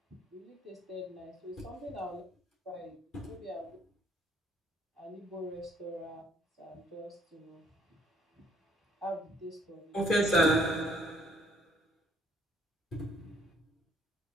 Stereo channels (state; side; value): normal; both; correlation 0.64